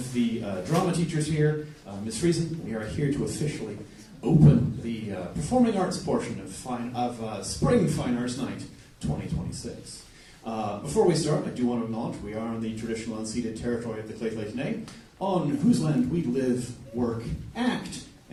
the drama teachers here, Ms. Friesen. We are here to officially open the performing arts portion of Spring Fine Arts Night 2026. Before we start, I do want to acknowledge we are on the traditional unceded territory of the Lheidli T'enneh, on whose land we live, work, act,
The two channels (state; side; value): identical; both; correlation 1.00